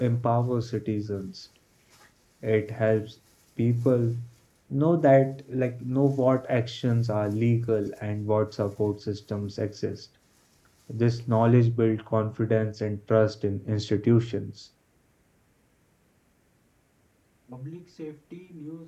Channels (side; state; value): both; identical; correlation 1.00